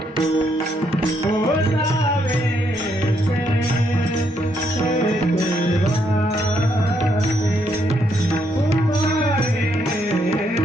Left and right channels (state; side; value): normal; both; correlation 0.74